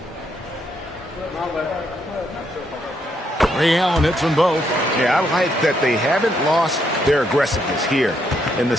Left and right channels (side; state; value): both; normal; correlation 0.75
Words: Ray Allen hits them both. Yeah, I like that they haven't lost their aggressiveness here in the